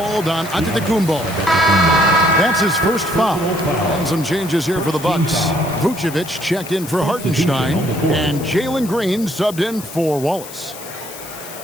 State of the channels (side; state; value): left; noise; hiss, 14 dB below the sound